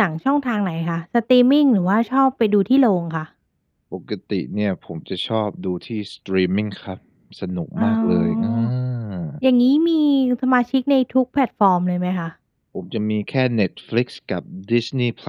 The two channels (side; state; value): both; identical; correlation 1.00